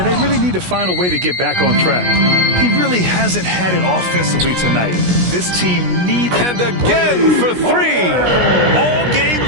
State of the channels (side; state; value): left; late; 16 ms